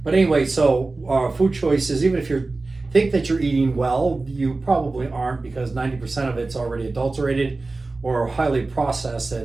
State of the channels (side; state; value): left; quieter; 3.4 dB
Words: But anyway, so food choices, even if you think that you're eating well, you probably aren't, because 90% of it's already adulterated or highly processed,